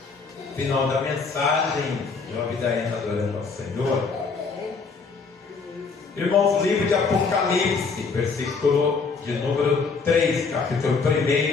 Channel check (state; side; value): quieter; right; 4.7 dB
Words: Final da mensagem, Job da Ena adorando ao Senhor. Irmãos, livro de Apocalipse, versículo de número 3, capítulo 1,